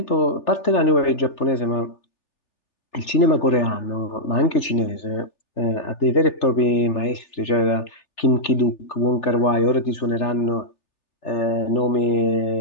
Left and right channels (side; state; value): right; late; 3.4 ms